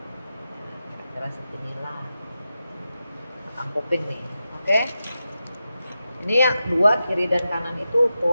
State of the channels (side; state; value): both; inverted; correlation -0.90